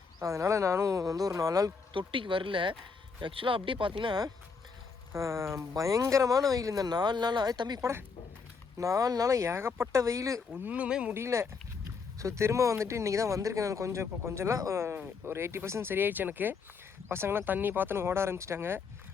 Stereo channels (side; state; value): right; quieter; 5.1 dB